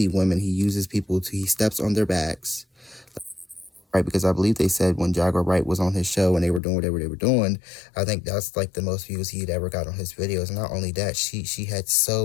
women. He steps on their backs, right? Because I believe they said when Jaguar Wright was on his show and they were doing whatever they were doing, I think that's like the most views he'd ever got on his videos. And not only that, she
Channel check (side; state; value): right; drops out; at 6.6 s